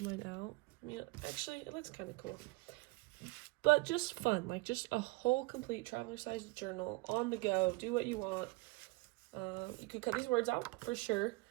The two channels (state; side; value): quieter; left; 23.2 dB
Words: mine out. I mean, actually, it looks kind of cool. But just fun, like just a whole complete traveler-sized journal on the go. Do what you want. You could cut these words out for sure.